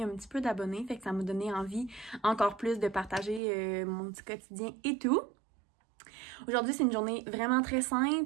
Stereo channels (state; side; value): drops out; left; at 3.4 s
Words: un petit peu d'abonnés, fait que ça m'a donné envie encore plus de partager mon petit quotidien et tout. Aujourd'hui, c'est une journée vraiment très